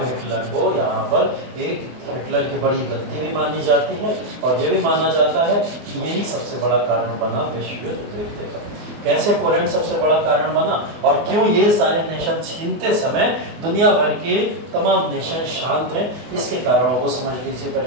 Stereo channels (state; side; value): late; left; 24 ms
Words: हिटलर को यहाँ पर एक हिटलर की बड़ी गलती भी मानी जाती है और ये भी माना जाता है कि यही सबसे बड़ा कारण बना विश्व युद्ध देखने का। कैसे पोलैंड सबसे बड़ा कारण बना और क्यों ये सारे नेशन छीनते समय दुनिया भर के तमाम नेशन शांत हैं, इसके कारणों को समझ लीजिए